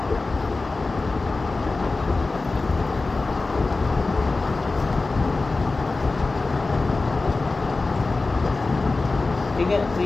ठीक है, तो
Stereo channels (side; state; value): right; quieter; 3.5 dB